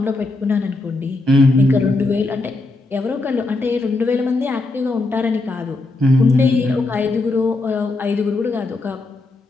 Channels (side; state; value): right; quieter; 3.1 dB